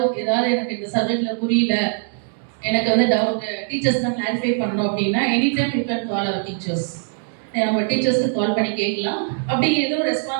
ஏதாவது எனக்கு இந்த சப்ஜெக்ட்ல புரியல, எனக்கு வந்து டவுட் டீச்சர்ஸ் தான் கிளாரிஃபை பண்ணணும் அப்படின்னா, any time you can call our teachers. நம்ம டீச்சர்ஸ்க்கு கால் பண்ணி கேட்கலாம். அப்படி எதுவும்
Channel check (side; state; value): left; silent; digital silence